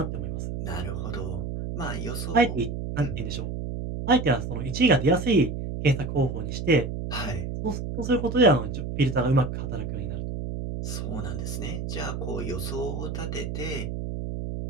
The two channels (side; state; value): right; noise; hum, 5 dB below the sound